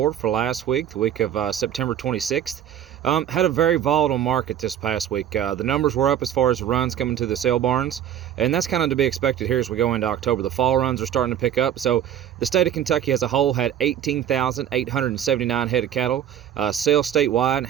for last week, the week of September 26th. Had a very volatile market this past week. The numbers were up as far as runs coming to the sale barns, and that's kind of to be expected here as we go into October. The fall runs are starting to pick up, so the state of Kentucky as a whole had 18,879 head of cattle sale statewide,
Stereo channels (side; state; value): left; quieter; 10.3 dB